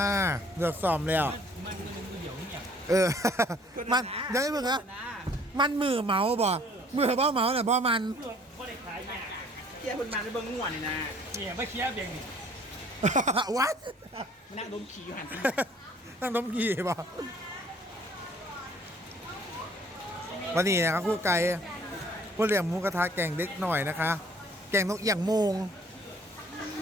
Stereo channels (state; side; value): normal; both; correlation 0.57